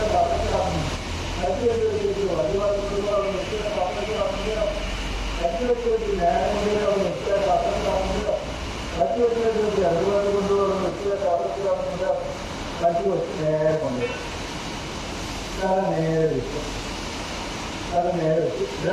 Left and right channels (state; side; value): identical; both; correlation 1.00